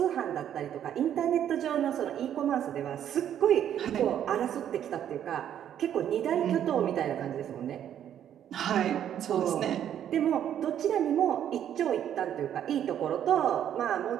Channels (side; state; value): left; quieter; 10.1 dB